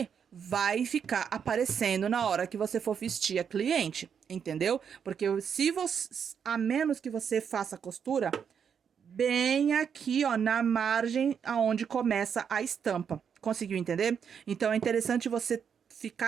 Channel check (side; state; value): left; quieter; 7.4 dB